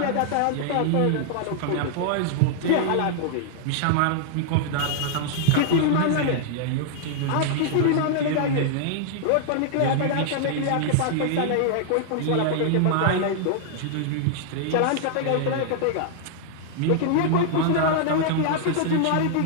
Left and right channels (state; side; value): different; both; correlation -0.01